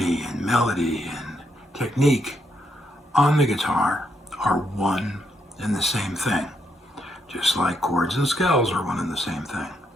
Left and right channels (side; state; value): both; normal; correlation 0.78